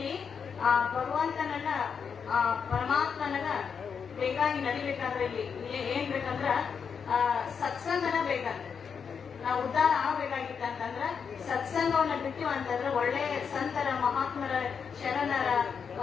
ಆ ಭಗವಂತನನ್ನ ಆ ಪರಮಾತ್ಮನನ್ನ ಬೇಕಾಗಿ ನಡಿಬೇಕಾದ್ರೆ ಇಲ್ಲಿ ಏನ್ ಬೇಕಂದ್ರ ಸತ್ಸಂಗನ ಬೇಕಂತ. ನಾವು ಉದ್ಧಾರ ಆಗ್ಬೇಕಾಗಿತ್ತಂತಂದ್ರ ಸತ್ಸಂಗವನ್ನ ಬಿಟ್ಟಿವ ಅಂತಂದ್ರ ಒಳ್ಳೆ ಸಂತರ ಮಹಾತ್ಮರ ಶರಣರ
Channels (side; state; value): right; quieter; 6.5 dB